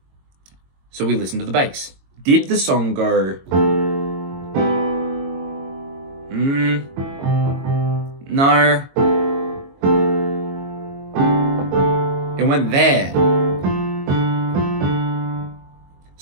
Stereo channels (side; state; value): left; late; 22 ms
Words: So we listen to the bass. Did the song go... No. It went there.